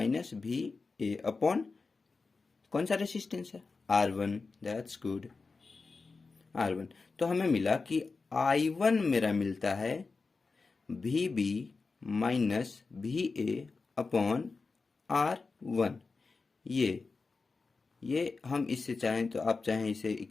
VA अपॉन कौन सा रेसिस्टेंस है, R1। That's good, R1। तो हमें मिला कि I1 मेरा मिलता है VB minus VA upon R1। ये हम इससे चाहें तो आप चाहें इसे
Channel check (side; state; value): right; quieter; 4.2 dB